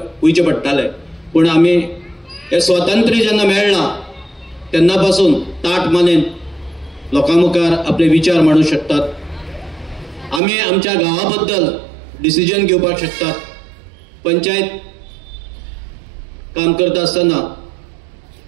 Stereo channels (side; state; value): left; drops out; at 10.4 s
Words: वयचे पडटाले. पूण आमी हे स्वातंत्र्य जेन्ना मेळ्ळां तेन्ना पासून ताट मानेन लोकां मुखार आपले विचार मांडूंक शकतात. आमी आमच्या गांवा बद्दल डिसिजन घेवपाक शकतात. पंचायत काम करता आसतना